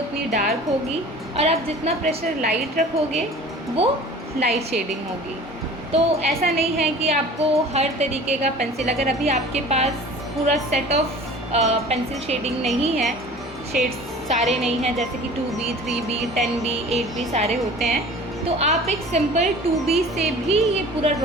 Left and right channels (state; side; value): normal; both; correlation 0.43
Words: डार्क होगी, और आप जितना प्रेशर लाइट रखोगे वो लाइट शेडिंग होगी। तो ऐसा नहीं है कि आपको हर तरीके का पेंसिल, अगर अभी आपके पास पूरा सेट ऑफ पेंसिल शेडिंग नहीं है, शेड्स सारे नहीं हैं, जैसे कि 2B, 3B, 10B, 8B सारे होते हैं, तो आप एक सिंपल 2B से भी ये पूरा